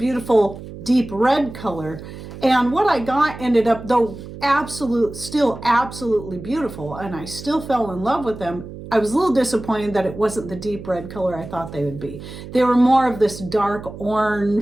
deep red color. And what I got ended up, though still absolutely beautiful, and I still fell in love with them, I was a little disappointed that it wasn't the deep red color I thought they would be. They were more of this dark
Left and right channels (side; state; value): right; noise; hum, 13 dB below the sound